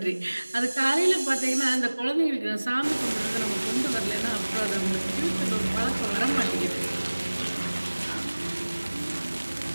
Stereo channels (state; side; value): inverted; both; correlation -1.00